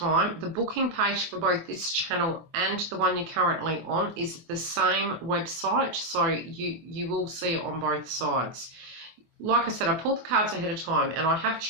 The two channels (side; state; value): left; late; 24 ms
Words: The booking page for both this channel and the one you're currently on is the same website, so you will see it on both sides. Like I said, I pulled the cards ahead of time and I have